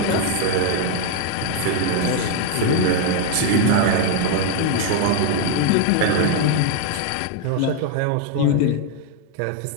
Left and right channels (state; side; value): different; both; correlation 0.00